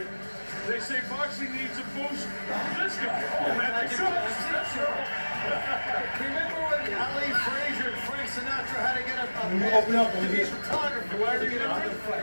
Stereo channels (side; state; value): both; inverted; correlation -1.00